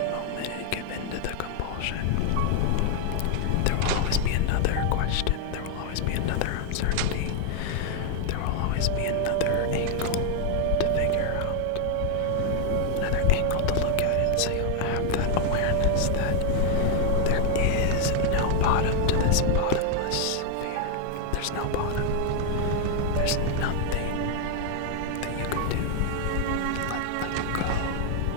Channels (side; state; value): both; different; correlation 0.00